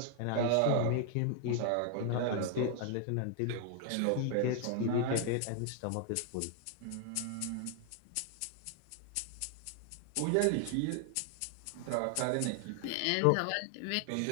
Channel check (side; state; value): both; different; correlation 0.00